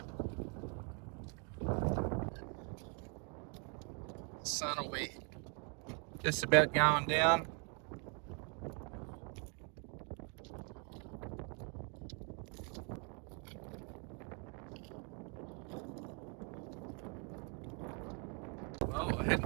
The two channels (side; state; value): left; quieter; 35.9 dB